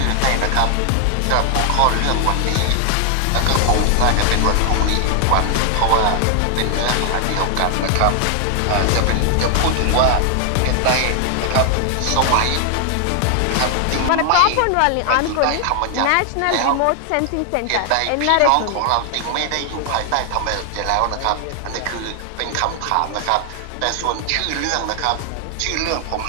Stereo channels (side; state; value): both; different; correlation 0.00